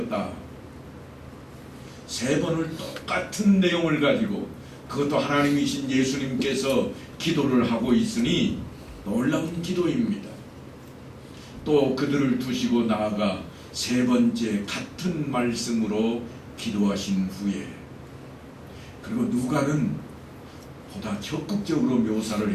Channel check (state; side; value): identical; both; correlation 1.00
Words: 3번을 똑같은 내용을 가지고, 그것도 하나님이신 예수님께서 기도를 하고 있으니 놀라운 기도입니다. 또 그들을 두시고 나아가 3번째 같은 말씀으로 기도하신 후에, 그리고 누가는 보다 적극적으로 묘사를